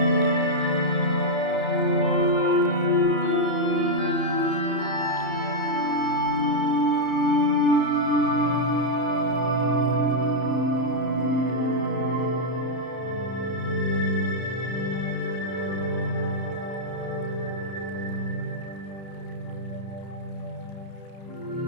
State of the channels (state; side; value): late; right; 31 ms